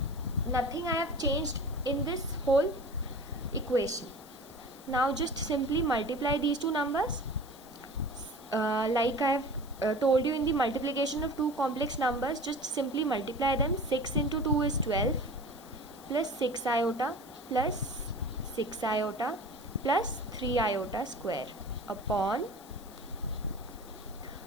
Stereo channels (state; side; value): noise; left; hiss, 22 dB below the sound